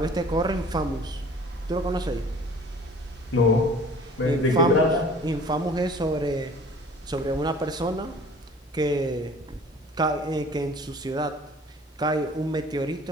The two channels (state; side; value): normal; both; correlation 0.48